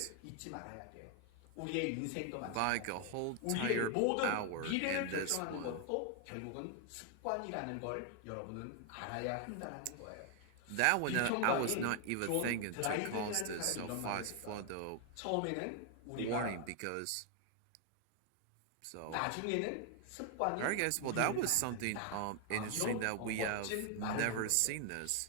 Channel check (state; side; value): different; both; correlation 0.00